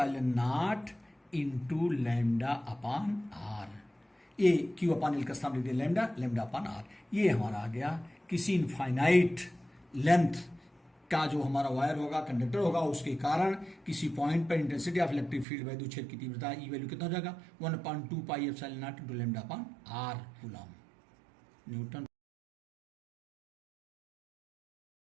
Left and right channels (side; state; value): left; drops out; at 15.5 s